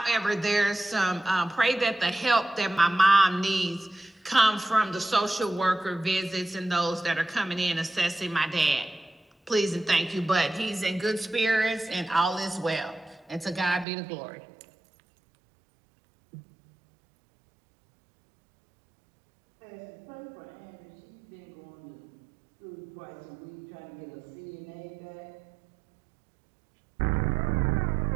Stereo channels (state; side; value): drops out; left; at 13.9 s